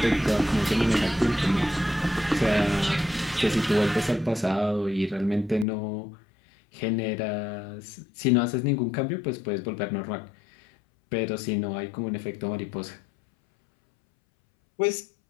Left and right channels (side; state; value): right; drops out; at 5.7 s